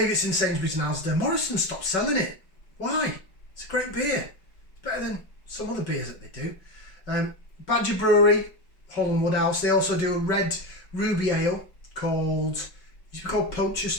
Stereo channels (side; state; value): right; late; 5.3 ms